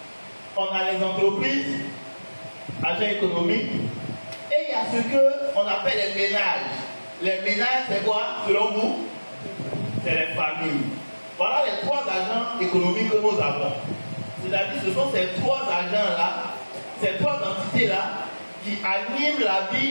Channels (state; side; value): inverted; both; correlation -1.00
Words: On a les entreprises, agents économiques, et il y a ce qu'on appelle les ménages. Les ménages, c'est quoi, selon vous? C'est les familles. Voilà les 3 agents économiques que nous avons. C'est-à-dire que ce sont ces 3 agents-là, ces 3 entités-là, qui animent la